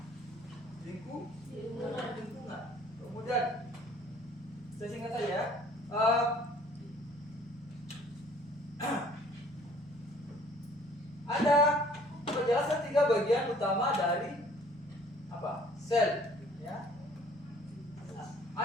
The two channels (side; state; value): both; normal; correlation 0.55